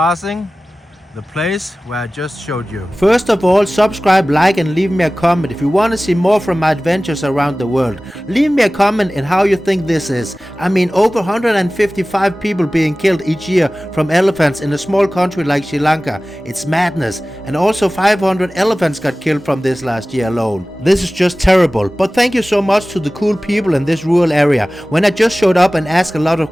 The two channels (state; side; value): normal; both; correlation 0.97